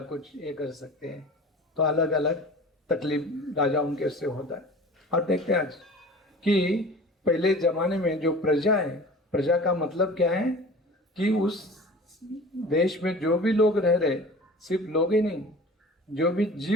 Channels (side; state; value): both; normal; correlation 0.40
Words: कुछ ये कर सकते हैं, तो अलग अलग तकलीफ राजाओं के से होता है। और देखते हैं आज कि पहले जमाने में जो प्रजा है, प्रजा का मतलब क्या है कि उस देश में जो भी लोग रह रहे, सिर्फ लोग ही नहीं, जो भी